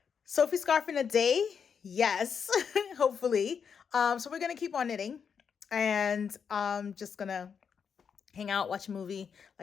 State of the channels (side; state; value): right; quieter; 6.8 dB